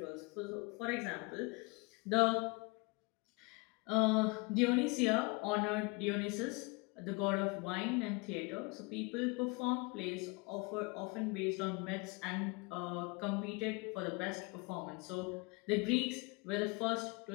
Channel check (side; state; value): right; quieter; 28.2 dB